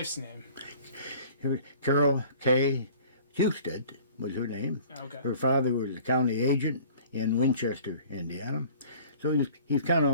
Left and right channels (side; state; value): both; inverted; correlation -0.49